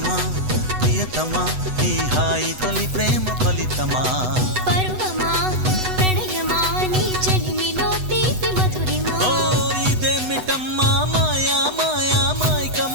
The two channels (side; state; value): left; late; 8.0 ms